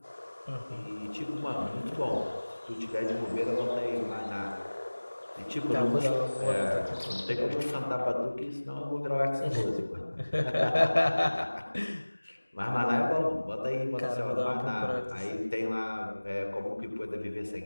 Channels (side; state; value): both; inverted; correlation -1.00